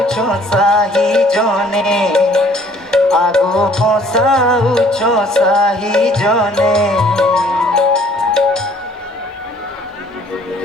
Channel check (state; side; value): normal; both; correlation 0.58